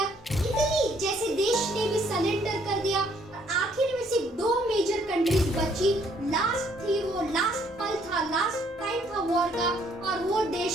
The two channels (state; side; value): normal; both; correlation 0.66